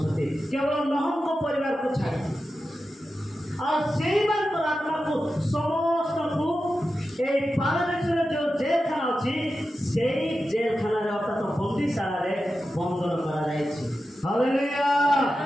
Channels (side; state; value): both; normal; correlation 0.92